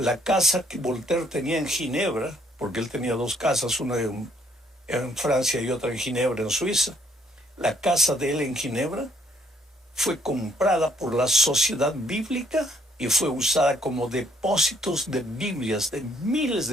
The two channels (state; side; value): normal; both; correlation 0.67